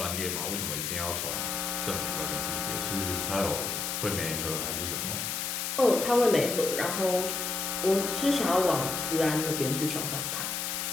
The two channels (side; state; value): left; noise; hiss, 2 dB below the sound